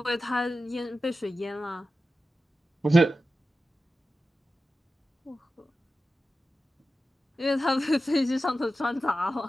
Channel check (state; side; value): normal; both; correlation 0.93